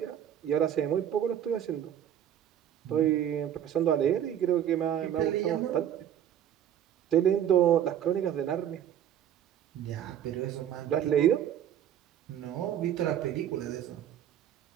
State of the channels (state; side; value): quieter; left; 10.3 dB